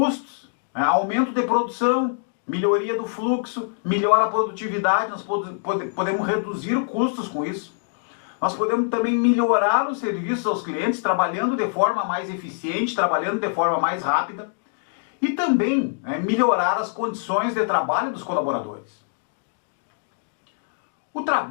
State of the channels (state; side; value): silent; right; digital silence